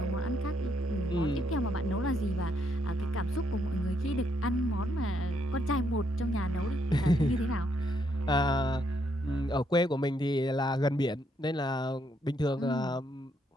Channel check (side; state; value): both; normal; correlation 0.74